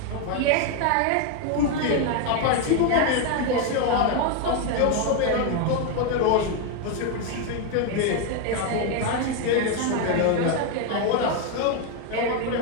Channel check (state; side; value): different; both; correlation 0.01